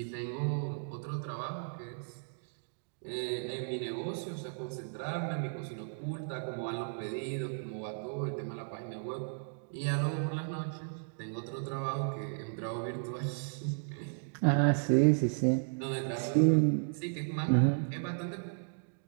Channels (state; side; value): silent; left; digital silence